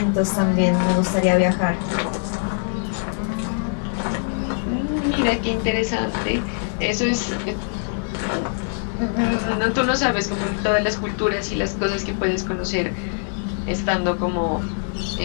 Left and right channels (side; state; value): right; silent; 57 dB below the other